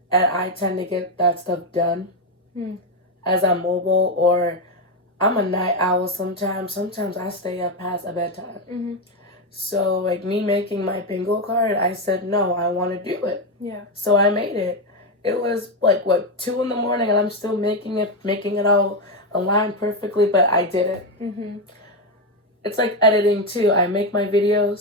and I tend to get that stuff done as I'm mobile, or I'm a night owl sometimes. Sometimes I stay up past a bedtime. So, like, me making my bingo card, I said, no, I want to do it. Yeah. So I made it. It was, 2 in the morning, and I'm still making it all align perfectly, but I did it. It's like editing, too. I make my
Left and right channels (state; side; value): normal; both; correlation 0.08